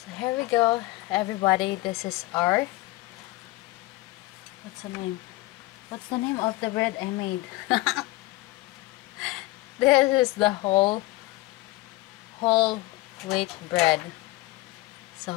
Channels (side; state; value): right; quieter; 19.7 dB